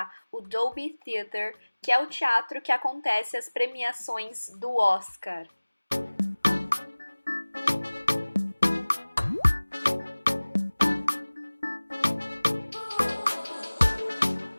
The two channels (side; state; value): both; inverted; correlation -1.00